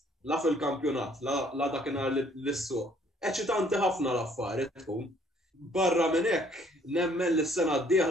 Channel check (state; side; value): normal; both; correlation 0.62